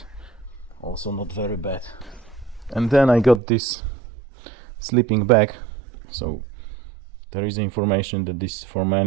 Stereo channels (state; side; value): drops out; left; at 3.4 s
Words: also not very bad. And then I got this sleeping bag. So there is information that this for